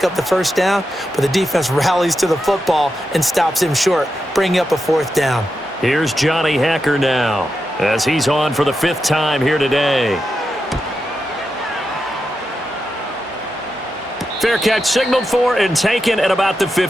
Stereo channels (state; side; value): normal; both; correlation 0.88